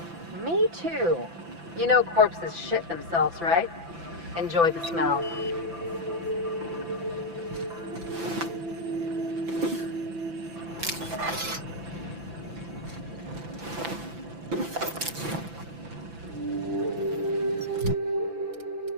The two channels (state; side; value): late; left; 5.9 ms